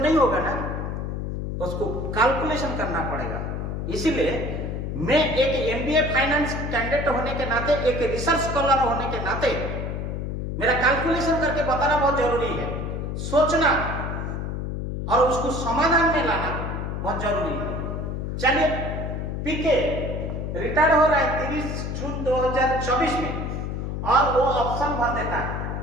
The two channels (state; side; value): noise; left; hum, 4 dB below the sound